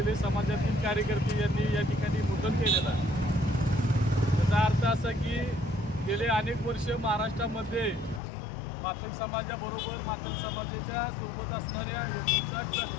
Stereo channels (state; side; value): drops out; right; at 8.2 s